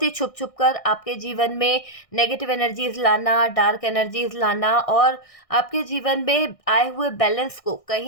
ही छुप छुप कर आपके जीवन में नेगेटिव एनर्जीज लाना, डार्क एनर्जीज लाना, और आपके जीवन में आए हुए बैलेंस को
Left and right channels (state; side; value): late; right; 1.6 ms